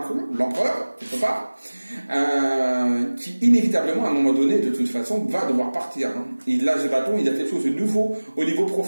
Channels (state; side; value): inverted; both; correlation -1.00